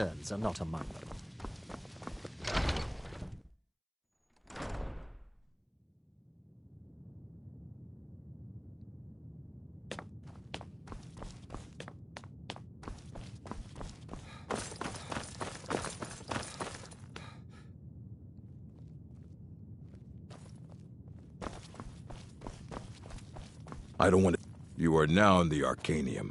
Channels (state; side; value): identical; both; correlation 1.00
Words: are not among them. I don't want to... You are now in the